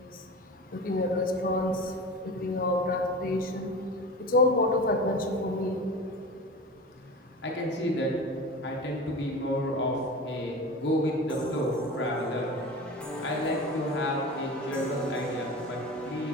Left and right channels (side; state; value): both; normal; correlation 0.32